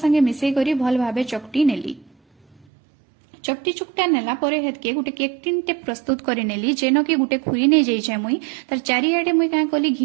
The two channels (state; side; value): drops out; left; at 2.7 s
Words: मिसई करी भल भाबे चकटी नेली। चकटी चुकटा नेला परे हेतके गुटे केक टिन टे प्रस्तुत करे नेली जेनो कि गुटे खुरी नै जाइछे मुई तार चारियाडे मुई का कली